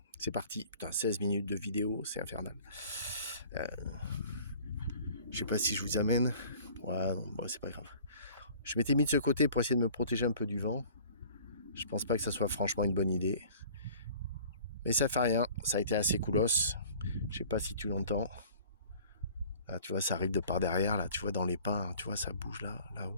c'est parti. Putain, 16 minutes de vidéo, c'est infernal. Je sais pas si je vous amène. Ouais, non, bon, c'est pas grave. Je m'étais mis de ce côté pour essayer de me protéger un peu du vent. Je pense pas que ça soit franchement une bonne idée. Mais ça fait rien, ça a été assez coolos. Je sais pas si tu l'entends. Là, tu vois, ça arrive de par derrière, là, tu vois, dans les pins, tu vois, ça bouge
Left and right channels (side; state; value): both; inverted; correlation -0.48